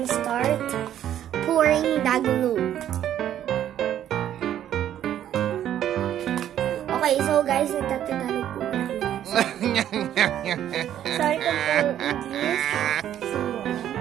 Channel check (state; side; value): quieter; left; 11.0 dB